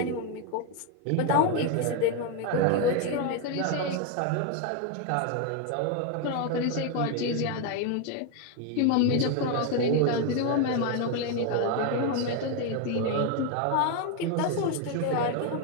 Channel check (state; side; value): different; both; correlation 0.01